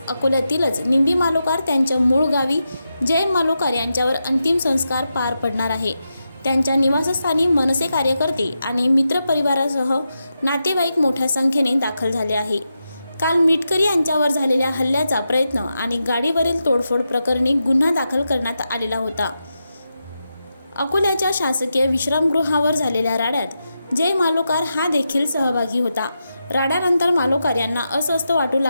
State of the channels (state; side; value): inverted; both; correlation -0.88